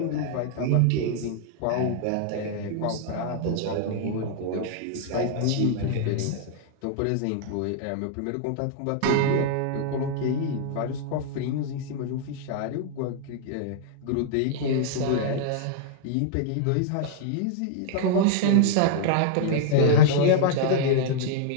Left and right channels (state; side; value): different; both; correlation -0.01